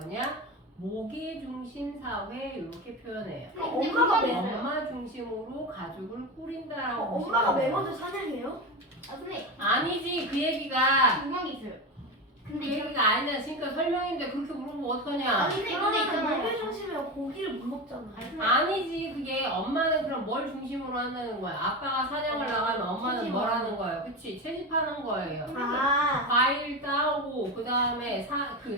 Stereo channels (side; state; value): both; normal; correlation 0.21